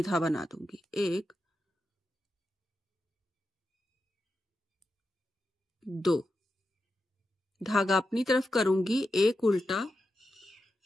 बना दूंगी, 1 2। धागा अपनी तरफ करूंगी, एक उल्टा,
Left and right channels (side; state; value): both; normal; correlation 0.89